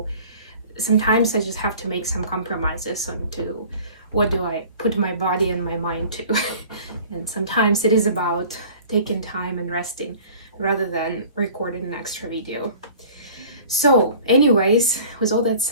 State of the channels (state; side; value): inverted; both; correlation -0.46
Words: sometimes I just have to make some compromises on to what do I put my body and my mind to. And sometimes it is about taking time and resting rather than recording an extra video. So anyways, with all that